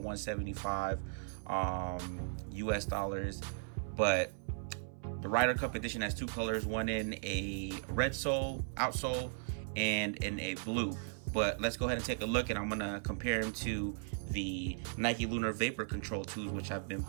$175 US dollars, but the Ryder Cup edition has two colors, one in a red sole, outsole, and in a blue. But let's go ahead and take a look, and I'm gonna compare them to the Nike Lunar Vapor Control 2s, which I've been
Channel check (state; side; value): silent; left; 53 dB below the other